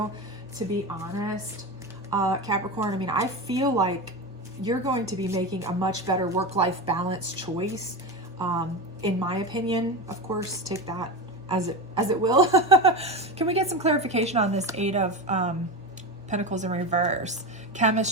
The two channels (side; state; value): both; normal; correlation 0.21